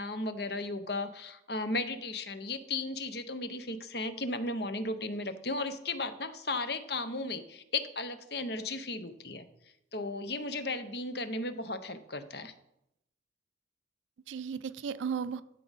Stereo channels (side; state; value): both; normal; correlation 0.08